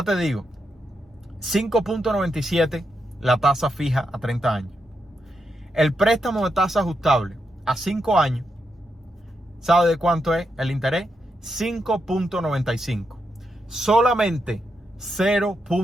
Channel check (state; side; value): normal; both; correlation 0.83